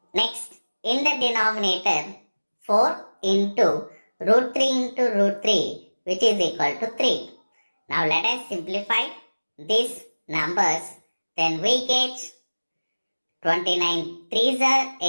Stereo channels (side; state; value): both; inverted; correlation -1.00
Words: Next, in the denominator, 4 into root 3 into root 3, which is equal to 3. Now let us simplify these numbers. Then we get 29 3s are